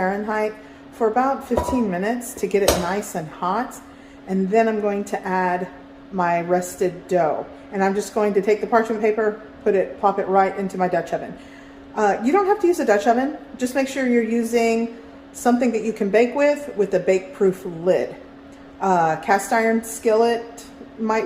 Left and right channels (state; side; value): identical; both; correlation 1.00